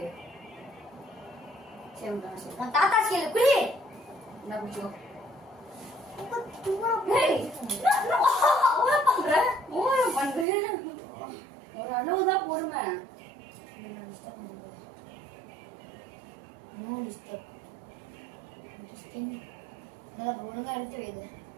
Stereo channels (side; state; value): left; drops out; at 10.5 s